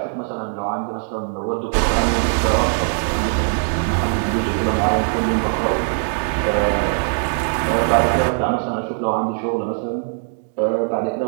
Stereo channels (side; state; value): left; silent; 61 dB below the other